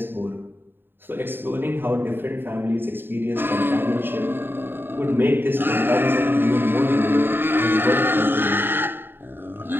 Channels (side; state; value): left; late; 0.098 ms